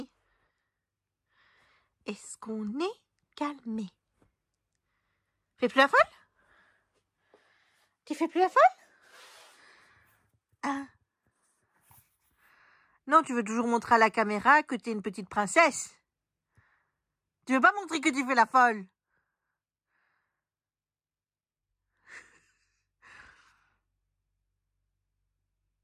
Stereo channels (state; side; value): identical; both; correlation 1.00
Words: Est-ce qu'on est calmé? Fais plus la folle? Tu fais plus la folle? Ah. Non, tu veux toujours montrer à la caméra que t'es une petite princesse. Tu veux pas montrer que tu fais la folle?